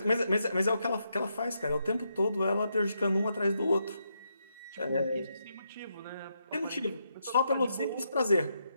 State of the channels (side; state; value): both; inverted; correlation -0.81